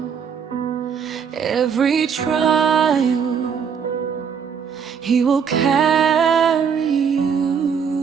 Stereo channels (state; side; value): quieter; left; 6.9 dB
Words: every trial, He will carry